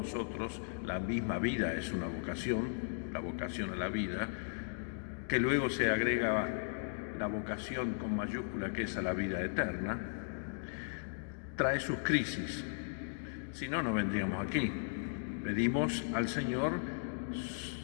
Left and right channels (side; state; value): right; silent; digital silence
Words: la misma vida es una vocación, la vocación a la vida, que luego se agrega la vocación con mayúscula que es a la vida eterna, trae sus crisis. Si no, no vendríamos aquí. Pedimos al Señor